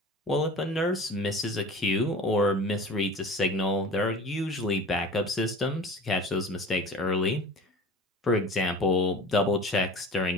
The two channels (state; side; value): normal; both; correlation 0.39